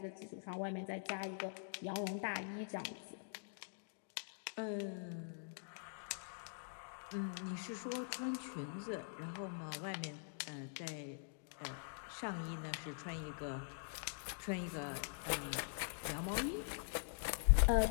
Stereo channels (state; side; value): silent; right; digital silence